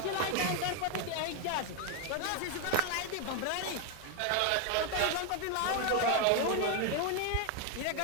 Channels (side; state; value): both; different; correlation 0.01